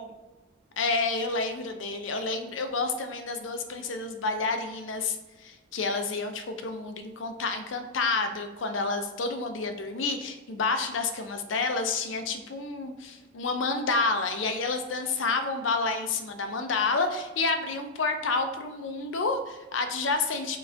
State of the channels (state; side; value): quieter; right; 3.3 dB